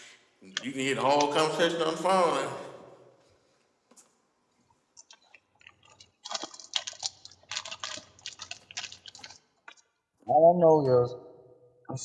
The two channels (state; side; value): identical; both; correlation 1.00